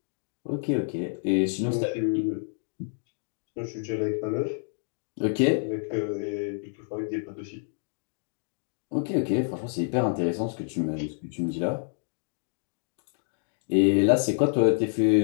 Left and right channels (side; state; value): right; silent; digital silence